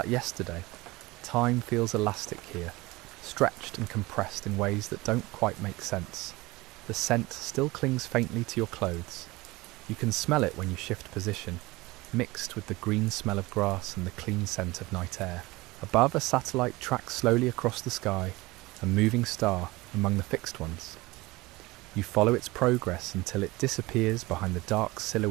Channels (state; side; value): quieter; left; 21.3 dB